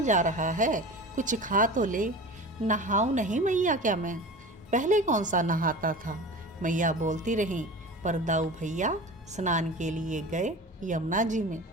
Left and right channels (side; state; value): both; normal; correlation 0.34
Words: जा रहा है, कुछ खा तो ले। नहाऊं नहीं मैया क्या मैं? पहले कौन सा नहाता था, मैया बोलती रही। पर दाऊ भैया स्नान के लिए गए यमुना जी में।